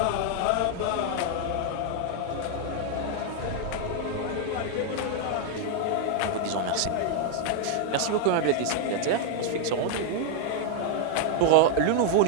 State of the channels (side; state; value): both; different; correlation 0.00